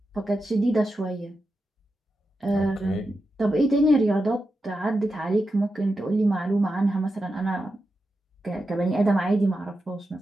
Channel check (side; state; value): both; normal; correlation 0.89